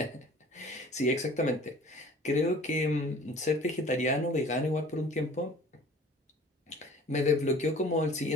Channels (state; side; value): normal; both; correlation 0.48